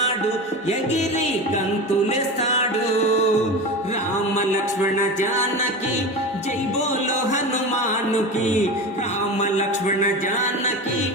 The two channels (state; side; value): normal; both; correlation 0.27